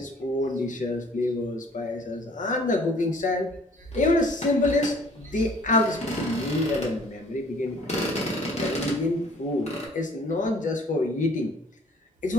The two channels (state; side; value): normal; both; correlation 0.56